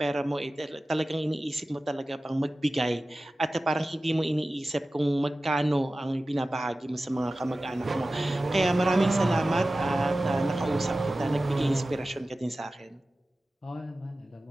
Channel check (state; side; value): normal; both; correlation 0.96